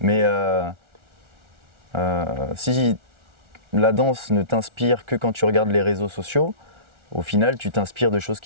Mais si la danse ne t'inspire que quand tu regardes les réseaux sociaux, au final, tu t'inspires de choses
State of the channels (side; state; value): left; late; 1.4 ms